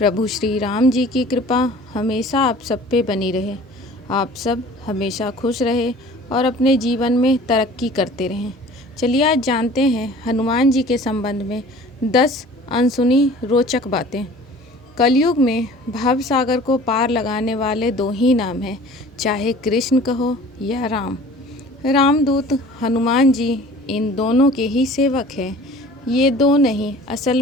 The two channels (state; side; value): normal; both; correlation 0.46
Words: श्री राम जी की कृपा हमेशा आप सब पे बनी रहे। आप सब हमेशा खुश रहे और अपने जीवन में तरक्की करते रहें। चलिए आज जानते हैं हनुमान जी के संबंध में 10 अनसुनी रोचक बातें। कलयुग में भव सागर को पार लगाने वाले दो ही नाम हैं, चाहे कृष्ण कहो या राम। रामदूत हनुमान जी इन दोनों के ही सेवक हैं। ये दो नहीं, असल